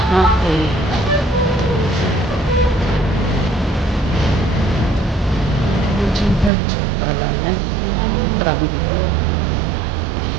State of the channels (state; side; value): drops out; left; at 6.5 s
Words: Chinchato. Pala na. Traffic ko.